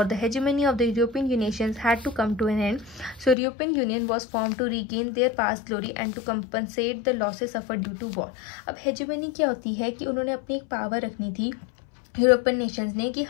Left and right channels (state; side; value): drops out; right; at 3.4 s